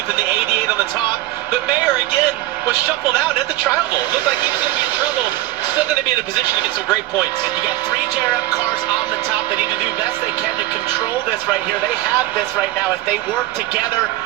and the 88 on the top. But Mayer, again, was shuffled out at the tri-oval. Looked like he was going to be in trouble. Still going to be in a position to get some great points. You got 3 JRM cars on the top. They need to do the best they can to control this right here. They have this right now. If they work together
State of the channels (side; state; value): left; quieter; 16.1 dB